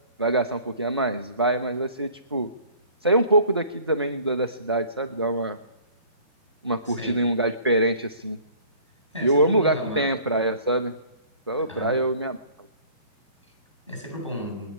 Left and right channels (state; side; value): inverted; both; correlation -0.51